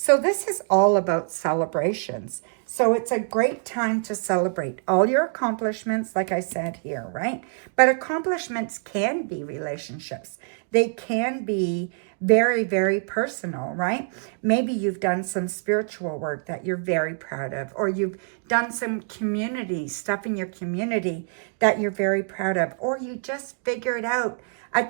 this is all about celebrations. So it's a great time to celebrate all your accomplishments, like I said here, right? But accomplishments can be relationships. They can be very, very personal, right? Maybe you've done some spiritual work that you're very proud of, or you've done some community stuff in your community that you're very proud of, or you just figured out a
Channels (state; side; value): silent; left; 62 dB below the other